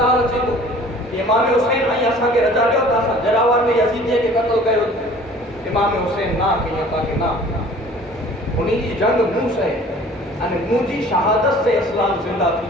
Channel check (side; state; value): both; normal; correlation 0.49